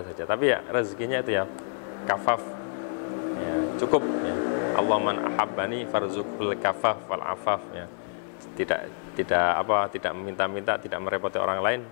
saja. Tapi ya rezekinya itu ya kafaf ya, cukup ya. Allah man ahabbani farzuqul kafaf wal afaf ya. Tidak meminta-minta, tidak merepoti orang lain,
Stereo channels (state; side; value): silent; right; 60 dB below the other